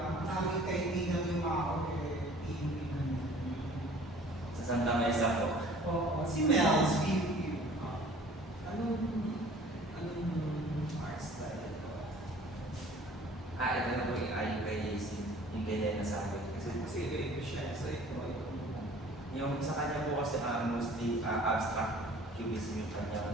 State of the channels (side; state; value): both; normal; correlation 0.50